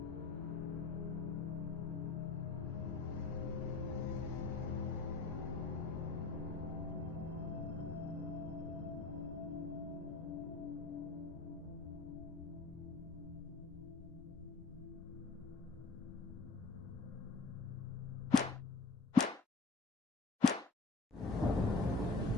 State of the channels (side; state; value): right; quieter; 3.9 dB